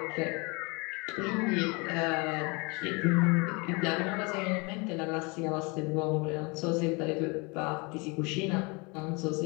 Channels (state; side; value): quieter; right; 29.2 dB